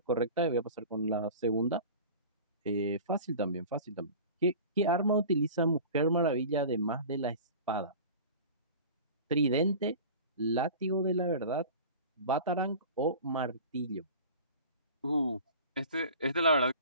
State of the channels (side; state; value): both; inverted; correlation -0.38